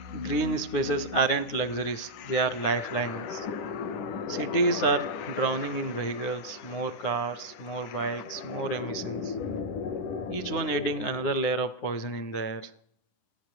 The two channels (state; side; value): late; right; 10 ms